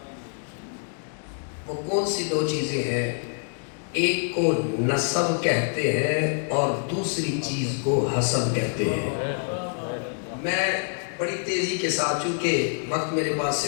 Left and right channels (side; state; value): right; silent; digital silence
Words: وہ کون سی دو چیزیں ہیں؟ ایک کو نسب کہتے ہیں اور دوسری چیز کو حسب کہتے ہیں۔ میں بڑی تیزی کے ساتھ، چونکہ وقت میرے پاس